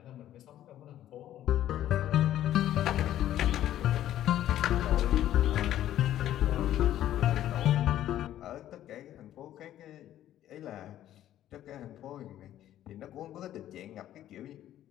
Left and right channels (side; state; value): right; quieter; 12.4 dB